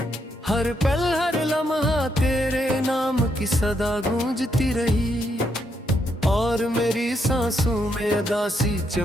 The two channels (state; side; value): normal; both; correlation 0.78